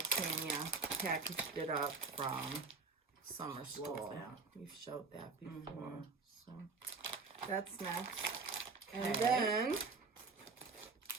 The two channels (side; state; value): left; quieter; 4.4 dB